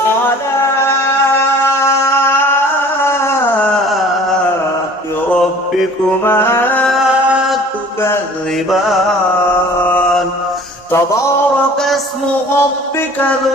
ربكما تكذبان تبارك اسم ربك ذو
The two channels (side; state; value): both; normal; correlation 0.48